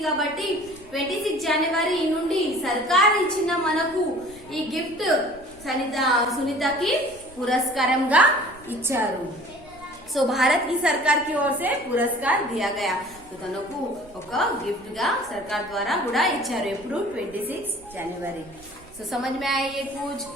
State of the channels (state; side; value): noise; right; rumble, 24 dB below the sound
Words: కాబట్టి 26 జనవరి నుండి సర్కార్ ఇచ్చిన మనకు ఈ గిఫ్ట్ సునీతకి పురస్కారంగా ఇచ్చారు. సో భారత్ की सरकार की ओर से पुरस्कार दिया गया. तो తనకు ఒక గిఫ్ట్ గా సర్కార్ ద్వారా కూడా ఇచ్చారు. ఎప్పుడు 26 जनवरी. సో समझ में आया ये कुछ.